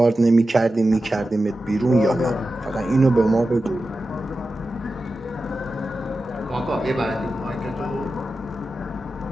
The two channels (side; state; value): both; normal; correlation 0.93